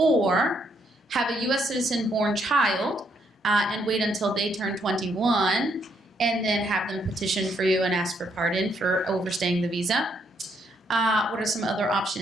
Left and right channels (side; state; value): both; normal; correlation 0.73